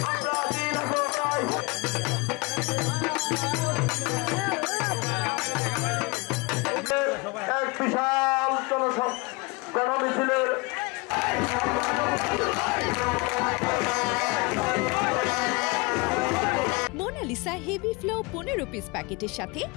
এক বিশাল গণমিছিলের মোনালিসা হেভি ফ্লো 15 পিস প্যাকেটের সাথে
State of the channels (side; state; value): right; quieter; 26.9 dB